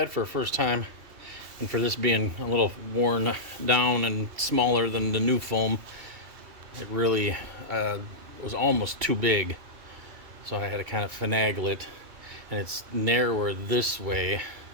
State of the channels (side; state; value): left; late; 2.7 ms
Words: for a first time. And for this being a little worn down and smaller than the new foam, it really was almost too big. So I had to kind of finagle it. And it's narrower this way